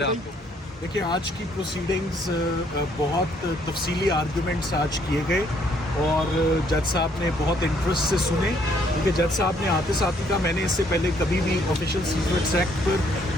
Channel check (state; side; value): normal; both; correlation 0.67